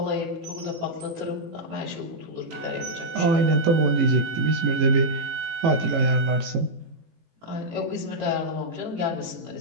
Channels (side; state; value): left; late; 18 ms